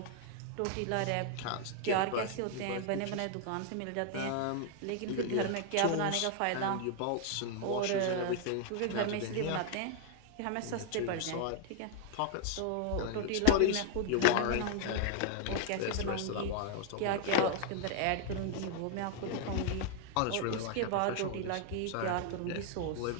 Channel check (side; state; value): both; different; correlation 0.00